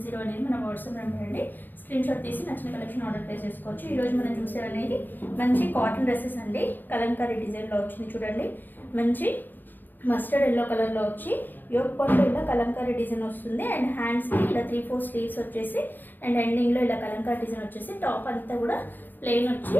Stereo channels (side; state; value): right; late; 0.089 ms